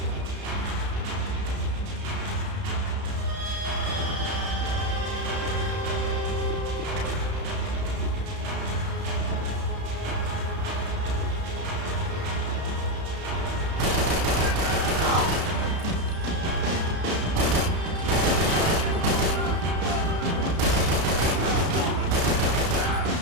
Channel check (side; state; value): left; late; 33 ms